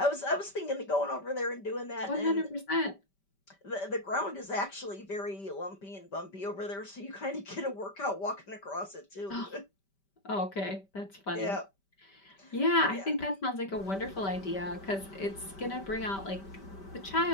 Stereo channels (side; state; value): right; late; 5.1 ms